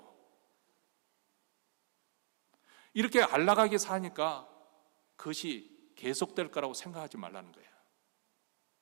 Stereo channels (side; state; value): left; silent; digital silence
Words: 이렇게 안락하게 사니까 그것이 계속될 거라고 생각하지 말라는 거예요.